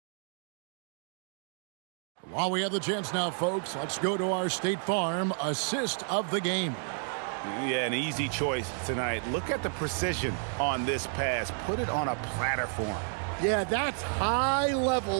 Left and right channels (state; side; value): silent; left; 57 dB below the other